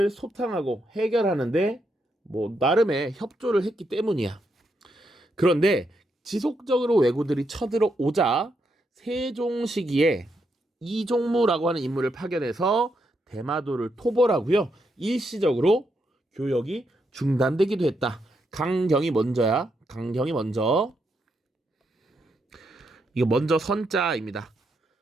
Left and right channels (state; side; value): normal; both; correlation 0.80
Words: 소탕하고 해결하는데 나름의 협조를 했기 때문이야. 그런데 지속적으로 왜구들이 쳐들어오자 세종 시기에 이종무라고 하는 인물을 파견해서 대마도를 토벌하고요. 일시적으로 교역이 중단되기도 했다. 강경이 먼저야. 강경이 먼저. 이거 먼저 선자입니다.